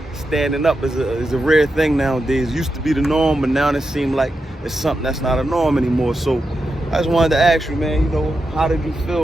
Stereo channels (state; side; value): normal; both; correlation 0.88